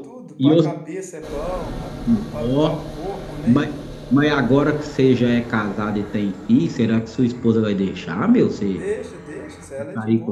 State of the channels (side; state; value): both; identical; correlation 1.00